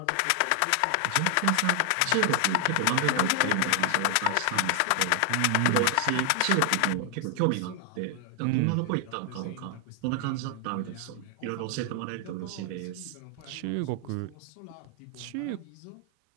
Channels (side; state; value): both; different; correlation 0.00